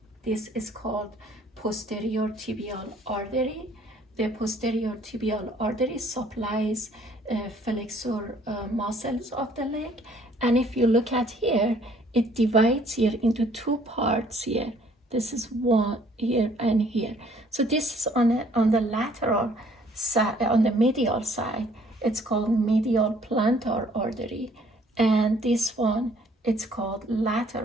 This is called posterior tibial artery. The posterior tibial artery supplies flexor muscles of the leg, and if you look at here, it divides here into two parts here. This is one here and here. So this is on the lateral side, on the medial side. It's called medial plantar artery, and this one, it's called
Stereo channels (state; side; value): normal; both; correlation 0.60